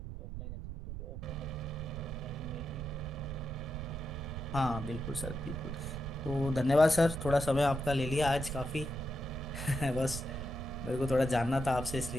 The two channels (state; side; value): noise; right; rumble, 7 dB below the sound